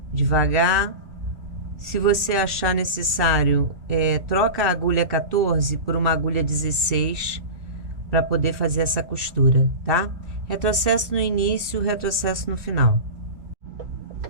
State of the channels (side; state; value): left; late; 2.6 ms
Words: devagar. Se você achar necessário, troca a agulha 14 por uma agulha 16 para poder fazer essa costura, tá? Retrocesso no início, retrocesso no final.